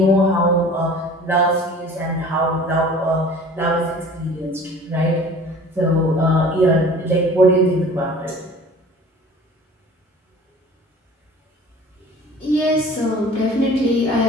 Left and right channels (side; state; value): both; normal; correlation 0.45